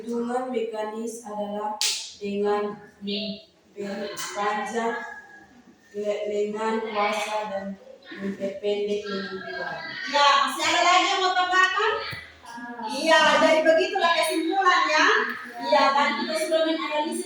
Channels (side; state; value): both; identical; correlation 1.00